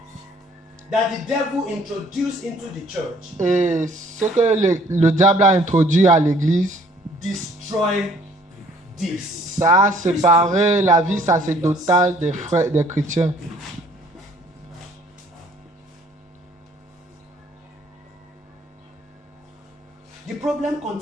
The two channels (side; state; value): both; normal; correlation 0.59